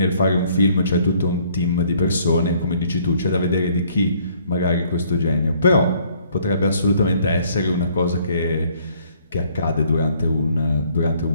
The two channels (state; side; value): inverted; both; correlation -0.62